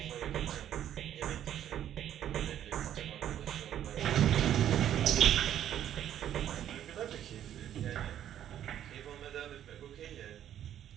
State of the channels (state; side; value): quieter; left; 10.8 dB